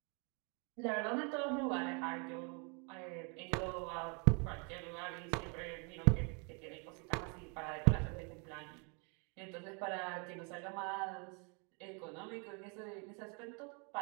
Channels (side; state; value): left; quieter; 35.0 dB